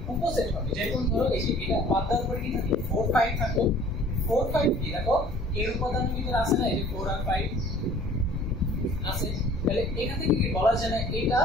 উপসেট হবে যেমন ধরো এই যে এটা বাদ দেওয়ার পরে কি থাকে 4 5 থাকো 4 5 কি দেখো এর উপাদানের ভিতরে আছে না এই যে 4 আর 5 আছে তাহলে এখান থেকে কি বলা যায় না এটা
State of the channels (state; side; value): normal; both; correlation 0.51